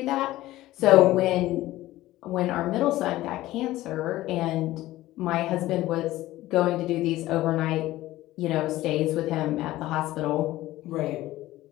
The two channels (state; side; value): quieter; right; 16.3 dB